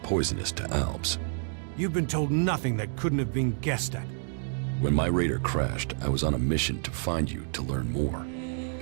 poisonous to Albs. You've been told nothing that couldn't have been guessed at. When my raider crashed, I was on a mission to find you to learn more.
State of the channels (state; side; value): silent; left; digital silence